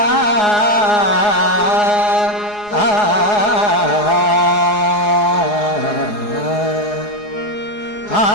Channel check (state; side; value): late; right; 4.8 ms